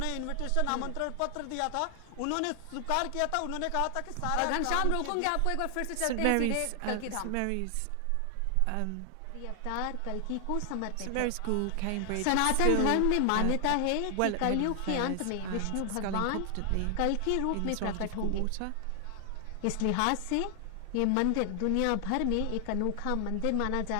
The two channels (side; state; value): both; different; correlation 0.00